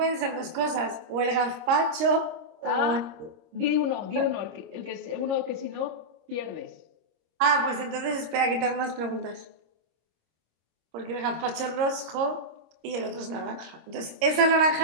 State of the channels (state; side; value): late; left; 26 ms